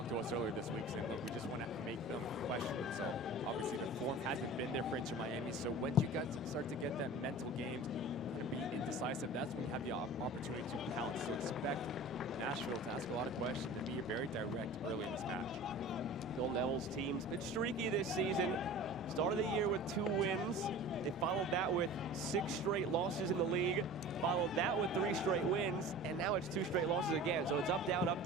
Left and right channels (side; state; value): both; normal; correlation 0.39